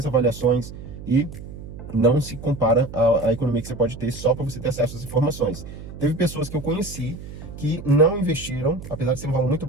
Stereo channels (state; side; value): noise; right; hum, 12 dB below the sound